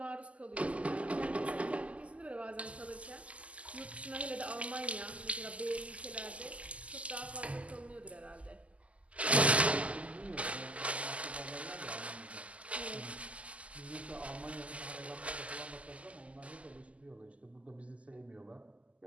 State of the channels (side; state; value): left; late; 0.064 ms